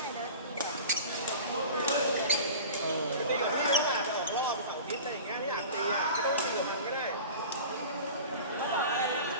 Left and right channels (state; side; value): inverted; both; correlation -0.37